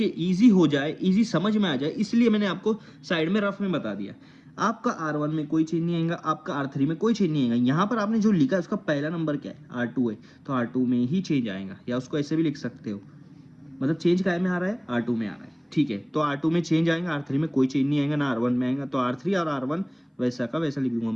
हो जाए, इजी समझ में आ जाए, इसलिए मैंने आपको साइड में रफ में बता दिया। आपका R1 में कोई चेंज नहीं आएगा, आपका R3 में कोई चेंज नहीं आएगा। यहाँ पर आपने जो लिखा है उसका पहला नंबर क्या है, R2 है, तो R2 में ही चेंज आएगा, या उसको ऐसे भी लिख सकते हो, मतलब चेंज काय में आ रहा है, R2 में आ रहा है। ठीक है, तो R2 में चेंज आएगा, R3 में कोई चेंज नहीं आएगा, ना R1 में आएगा। तो R3 और R1 वैसा का वैसा लिख दूंगा,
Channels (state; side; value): identical; both; correlation 1.00